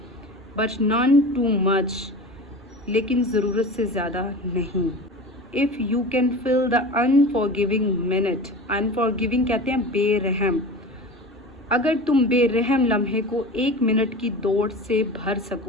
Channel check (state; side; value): normal; both; correlation 0.33